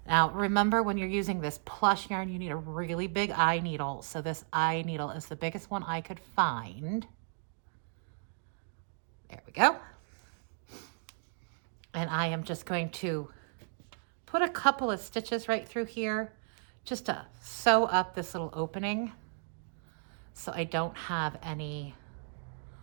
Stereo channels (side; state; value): left; silent; digital silence